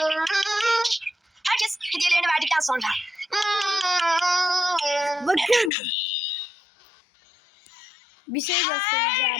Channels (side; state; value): right; drops out; at 5.7 s